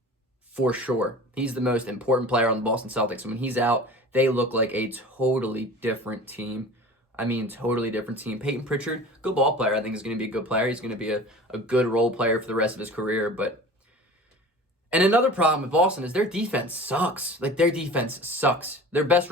For sure. He's the most important player on the Boston Celtics. And when he's out, they look like a totally different team. I mean, totally different team. Peyton Pritchard, good ball player. I think is going to be a good player. He's going to be a good role player for the rest of his career. And another problem with Boston is their defense sucks. Their defense sucks. Their best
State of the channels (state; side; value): normal; both; correlation 0.39